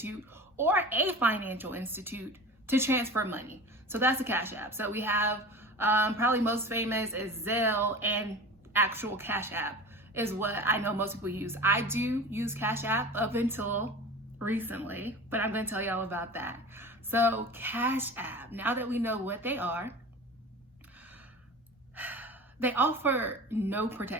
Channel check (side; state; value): both; normal; correlation 0.35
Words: or a financial institute to transfer money. So that's a cash app. So we have probably most famous is Zelle, and actual Cash App is what I know most people use. I do use Cash App up until recently, but I'm going to tell y'all about that. So Cash App, now that we know what they are, they offer no